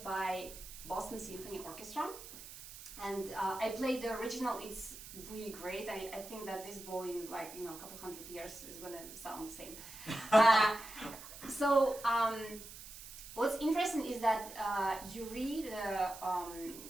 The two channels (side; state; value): right; noise; hiss, 14 dB below the sound